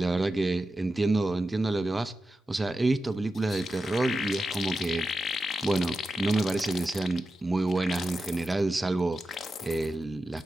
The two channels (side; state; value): both; normal; correlation 0.91